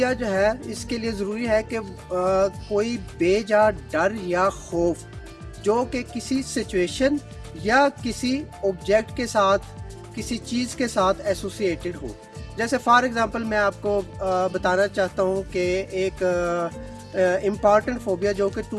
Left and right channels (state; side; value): identical; both; correlation 1.00